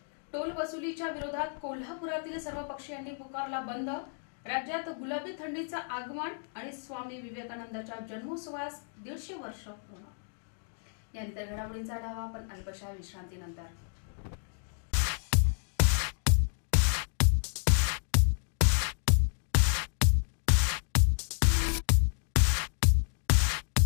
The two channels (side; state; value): right; silent; 57 dB below the other